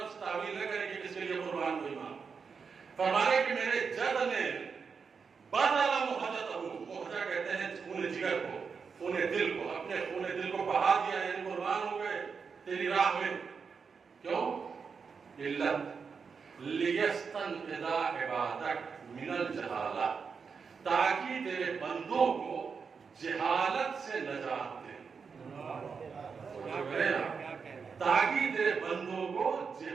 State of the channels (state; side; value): quieter; left; 5.7 dB